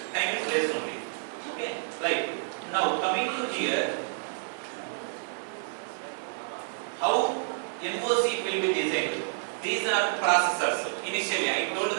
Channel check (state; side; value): silent; left; 58 dB below the other